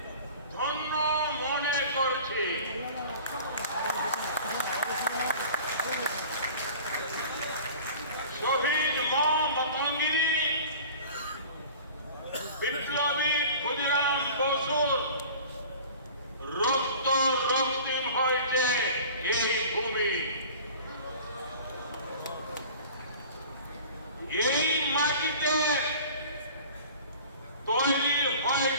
ধন্য মনে করছি। শহীদ মতঙ্গিনী, বিপ্লবী ক্ষুদিরাম বসুর রক্ত রক্তিম হয়েছে এই ভূমি। এই মাটিতে তৈরি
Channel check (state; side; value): inverted; both; correlation -0.42